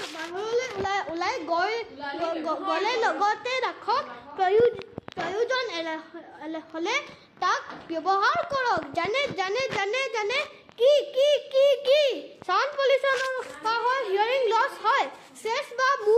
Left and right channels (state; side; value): identical; both; correlation 1.00